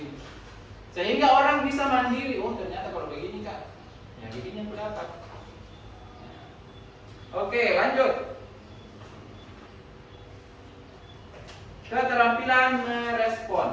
Sehingga orang bisa mandiri, oh ternyata kalau begini Kak, ya begini yang dapat. Oke, lanjut. Keterampilan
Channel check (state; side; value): identical; both; correlation 1.00